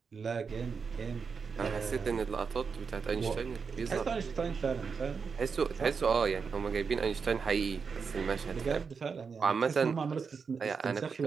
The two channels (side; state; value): left; quieter; 5.6 dB